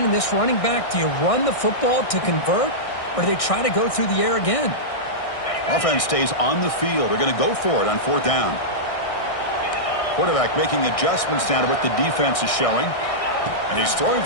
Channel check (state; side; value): late; right; 1.6 ms